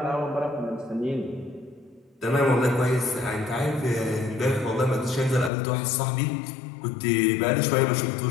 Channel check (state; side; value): drops out; right; at 5.5 s